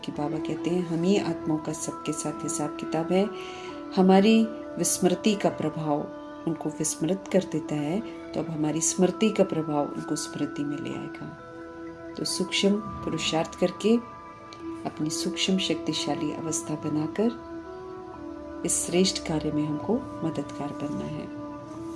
बाबा कहते हैं हम ही आत्माओं का सबके साथ हिसाब किताब है। हमारी विस्मृति का प्रभाव उनको विस्मृत कर देता है, तो अब हमारी स्मृति का प्रभाव उनको स्मृति में ले आएगा। तो सूक्ष्म पुरुषार्थ करके अपनी सूक्ष्म शक्तिशाली अवस्था बनाकर इस श्रेष्ठ कार्य में हमको मददगार बनना है।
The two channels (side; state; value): both; identical; correlation 1.00